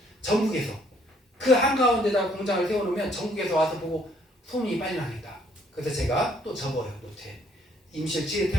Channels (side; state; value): both; normal; correlation 0.65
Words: 전국에서. 그 한가운데다가 공장을 세워놓으면 전국에서 와서 보고 소문이 빨리 나겠다. 그래서 제가 또 적어요. 노트에. 임실 치즈